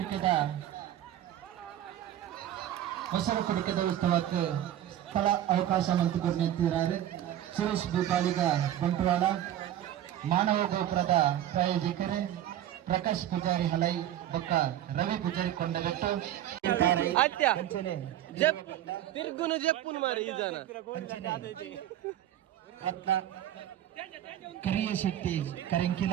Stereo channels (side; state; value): left; quieter; 12.0 dB